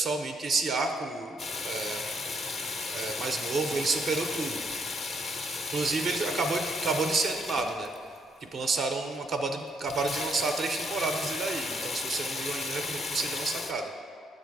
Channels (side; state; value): both; normal; correlation 0.72